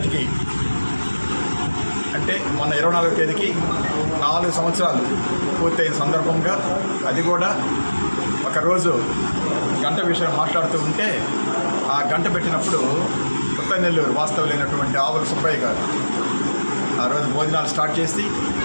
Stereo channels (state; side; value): inverted; both; correlation -1.00